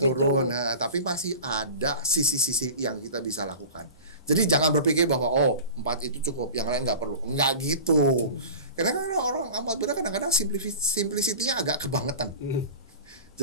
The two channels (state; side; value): inverted; both; correlation -0.35